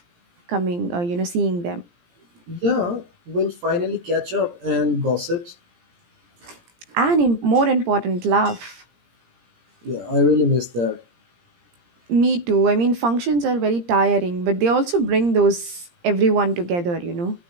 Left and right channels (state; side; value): late; left; 17 ms